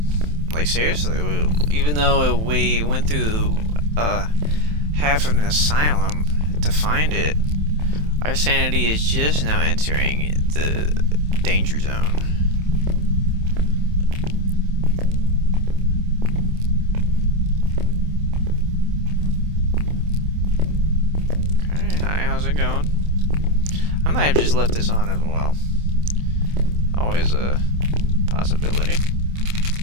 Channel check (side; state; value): left; late; 27 ms